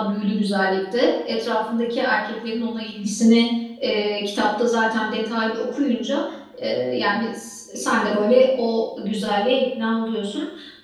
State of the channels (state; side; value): identical; both; correlation 1.00